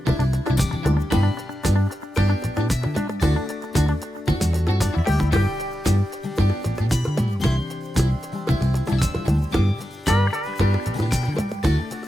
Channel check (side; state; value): both; normal; correlation 0.90